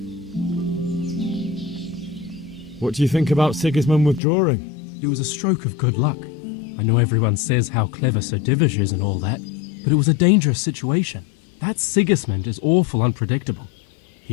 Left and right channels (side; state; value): right; drops out; at 4.2 s